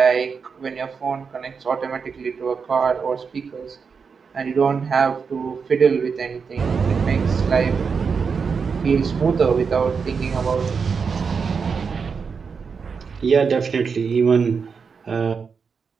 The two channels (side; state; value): left; quieter; 5.6 dB